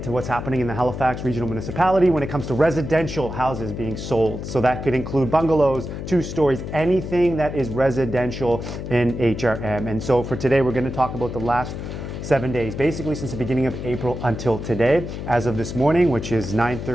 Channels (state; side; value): noise; left; hum, 7 dB below the sound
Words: to what's happening in the Halifax Regional Municipality when it comes to residential houses being sold. So that could include bungalows, 2 stories, anything that is residential in HRM. And so for today, we're going to talk about the last 7 days, basically since the beginning of April until today, as of this morning, which is